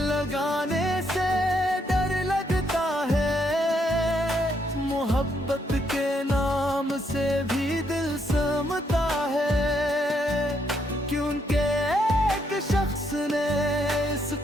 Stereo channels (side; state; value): both; normal; correlation 0.75